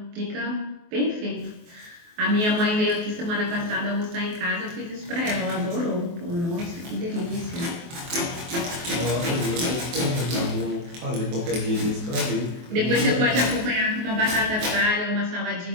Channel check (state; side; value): late; left; 23 ms